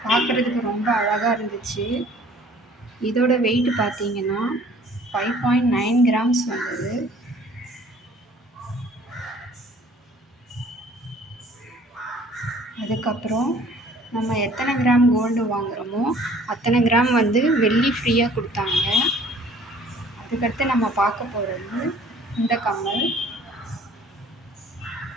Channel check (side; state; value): both; normal; correlation 0.54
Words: பார்க்குறதுக்கு ரொம்ப அழகாக இருந்துச்சு. இதோட வெயிட் பார்த்தீங்கன்னா 5.9 கிராம்ஸ் வந்தது. அதுக்கப்புறம் நம்ம எத்தனை கிராம் கோல்டு வாங்குகிறோமோ அத்தனை கிராம் வந்து வெள்ளி ஃப்ரீயாக கொடுத்தாங்க. அதுக்கடுத்து நம்ம பார்க்க போகிறது இந்த கம்மல்.